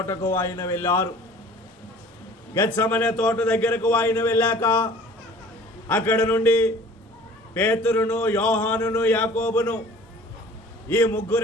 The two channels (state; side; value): normal; both; correlation 0.48